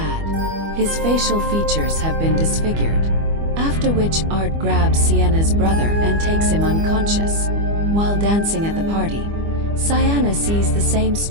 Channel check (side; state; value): left; late; 25 ms